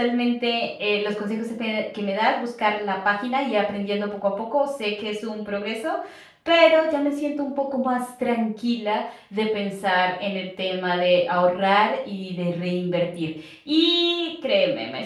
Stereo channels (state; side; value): identical; both; correlation 1.00